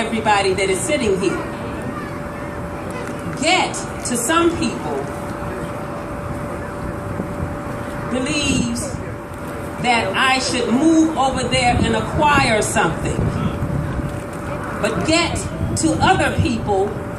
that is sitting here. Get, to some people, believes that I should move over there and acquire something. But get to other people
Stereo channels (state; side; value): identical; both; correlation 1.00